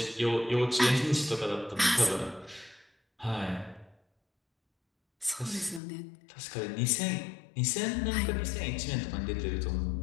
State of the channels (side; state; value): right; drops out; at 5.8 s